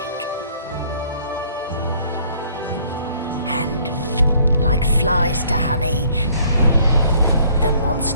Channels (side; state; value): both; inverted; correlation -0.60